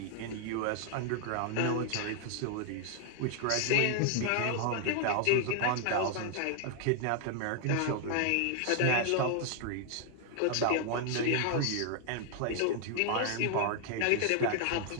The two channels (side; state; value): both; different; correlation 0.00